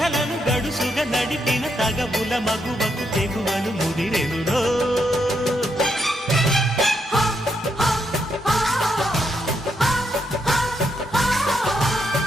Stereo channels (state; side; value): normal; both; correlation 0.79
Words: గడుసుగా నడిపిన తగబుల మగువకు తెగువను ముదిరెనురో